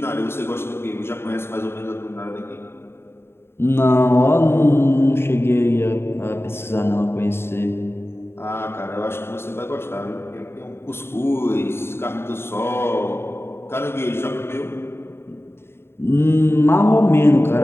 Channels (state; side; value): late; right; 0.12 ms